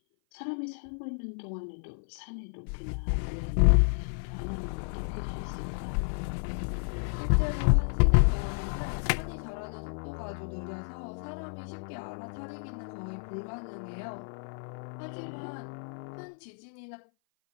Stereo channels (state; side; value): silent; right; 55 dB below the other